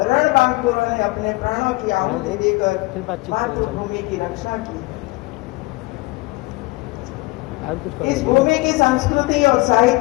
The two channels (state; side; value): quieter; right; 23.2 dB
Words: ने अपने प्राणों की आहुति देकर मातृभूमि की रक्षा की। इस भूमि की संस्कृति और